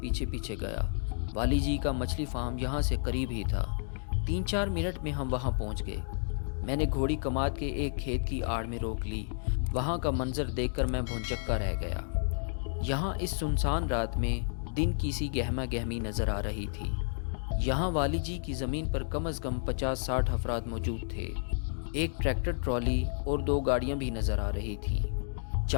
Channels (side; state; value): right; silent; digital silence